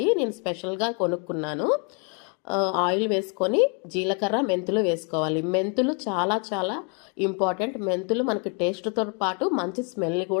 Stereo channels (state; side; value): quieter; right; 37.1 dB